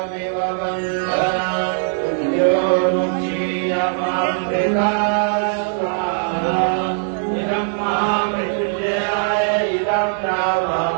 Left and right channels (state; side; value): silent; left; digital silence